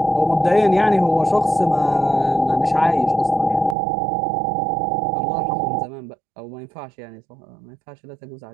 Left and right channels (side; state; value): left; drops out; at 3.8 s